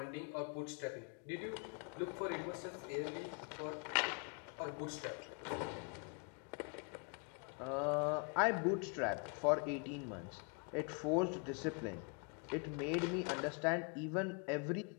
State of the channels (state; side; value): quieter; right; 36.5 dB